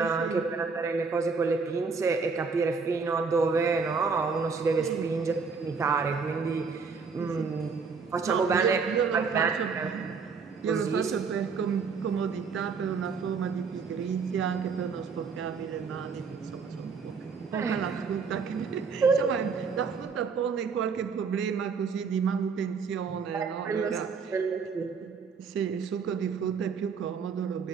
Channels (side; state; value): left; quieter; 5.3 dB